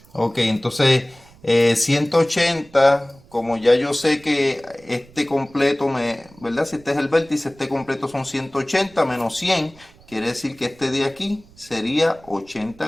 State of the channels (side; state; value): right; noise; rumble, 26 dB below the sound